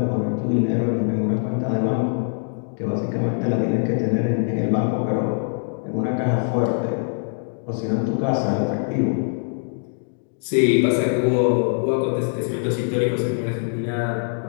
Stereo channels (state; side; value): silent; right; digital silence